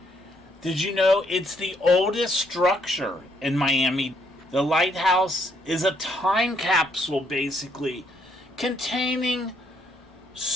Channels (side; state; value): both; normal; correlation 0.71